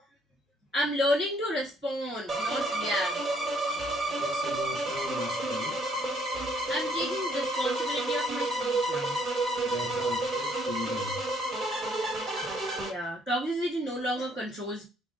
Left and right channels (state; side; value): normal; both; correlation 0.66